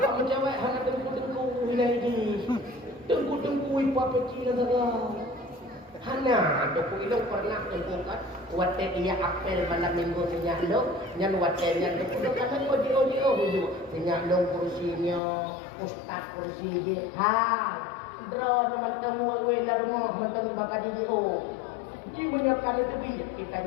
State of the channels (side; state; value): right; drops out; at 15.2 s